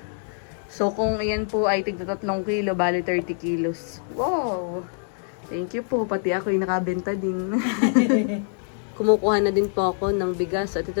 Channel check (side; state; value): right; silent; digital silence